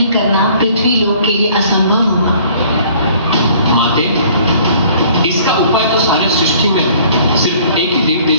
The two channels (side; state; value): both; inverted; correlation -0.55